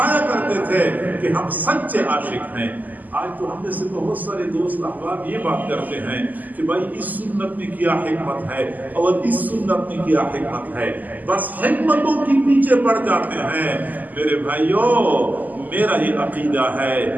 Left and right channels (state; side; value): late; left; 0.082 ms